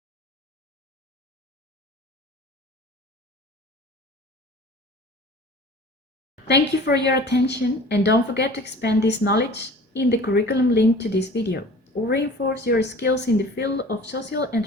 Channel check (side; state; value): both; normal; correlation 0.44